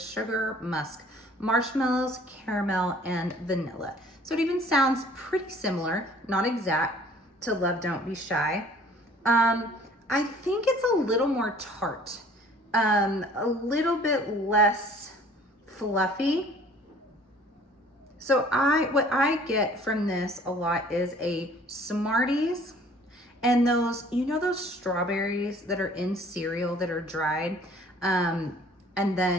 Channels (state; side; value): normal; both; correlation 0.53